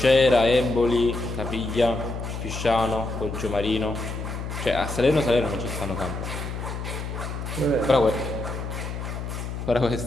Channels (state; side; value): noise; left; hum, 6 dB below the sound